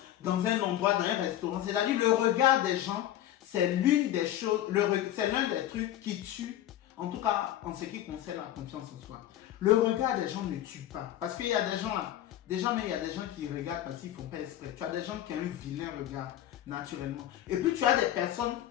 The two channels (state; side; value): quieter; right; 12.5 dB